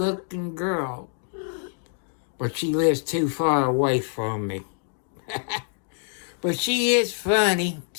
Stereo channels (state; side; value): silent; right; digital silence